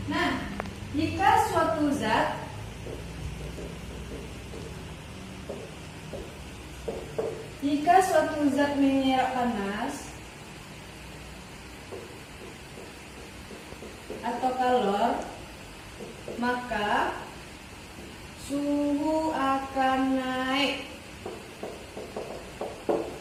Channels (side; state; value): both; identical; correlation 1.00